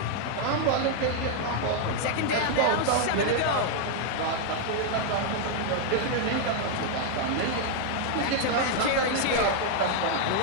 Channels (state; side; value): different; both; correlation 0.00